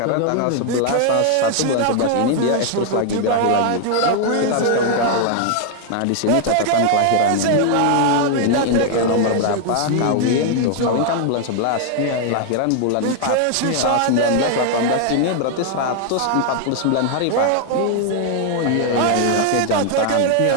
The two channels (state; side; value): different; both; correlation 0.00